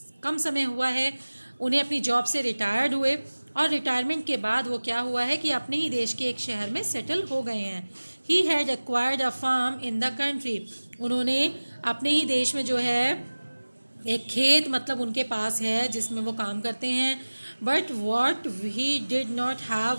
कम समय हुआ है उन्हें अपनी जॉब से रिटायर्ड हुए, और रिटायरमेंट के बाद वो क्या हुआ है कि अपने ही देश के एक शहर में सेटल हो गए हैं। He had acquired a farm in the country. उन्होंने अपने ही देश में जो है एक खेत मतलब उनके पास है जिसमें वो काम करते हैं। But what he did not have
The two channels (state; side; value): inverted; both; correlation -1.00